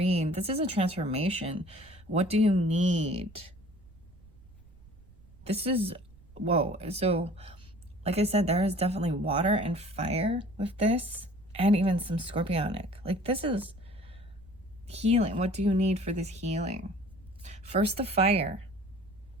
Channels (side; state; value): right; noise; rumble, 24 dB below the sound